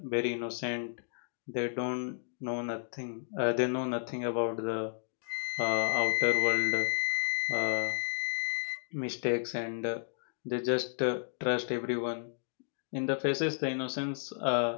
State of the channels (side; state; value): right; silent; digital silence